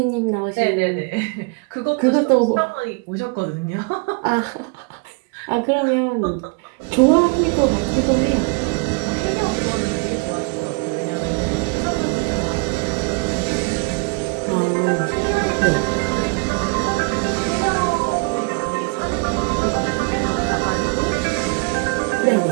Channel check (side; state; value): left; quieter; 31.8 dB